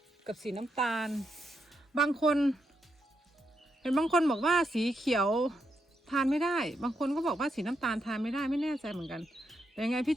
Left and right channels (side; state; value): both; normal; correlation 0.82